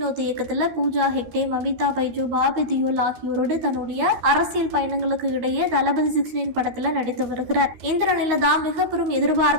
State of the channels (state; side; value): late; left; 13 ms